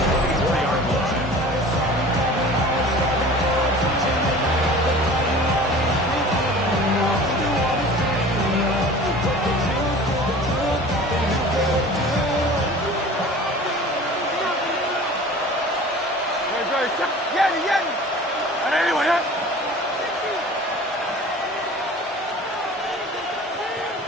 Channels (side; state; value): both; normal; correlation 0.42